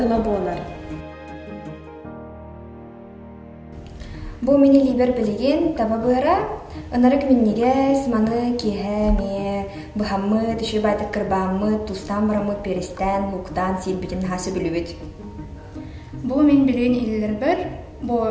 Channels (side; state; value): both; identical; correlation 1.00